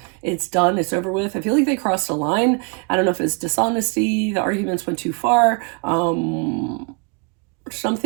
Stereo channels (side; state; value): left; quieter; 33.0 dB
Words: done, it's over with. I feel like they crossed a line. I don't know if it's dishonesty, the arguments went too far,